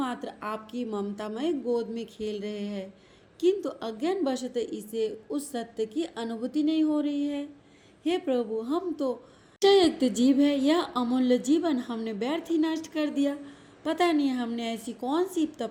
आपकी ममतामय गोद में खेल रहे हैं, किंतु अज्ञान वशत इसे उस सत्य की अनुभूति नहीं हो रही है। हे प्रभु, हम तो निश्चययुक्त जीव है, यह अमूल्य जीवन हमने व्यर्थ ही नष्ट कर दिया। पता नहीं हमने ऐसी कौन सी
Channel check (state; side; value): identical; both; correlation 1.00